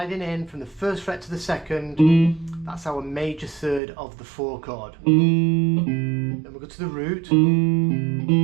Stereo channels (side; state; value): left; drops out; at 3.8 s